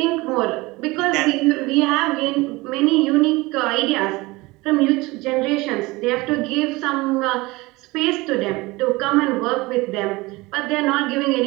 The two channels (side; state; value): left; quieter; 22.1 dB